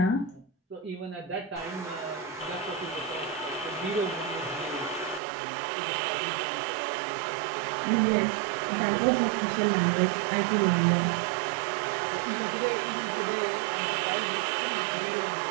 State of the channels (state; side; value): drops out; left; at 5.2 s